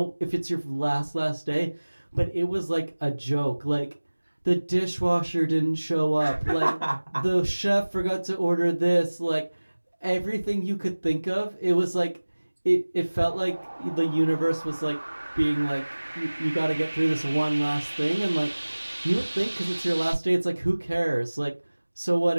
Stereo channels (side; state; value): both; inverted; correlation -1.00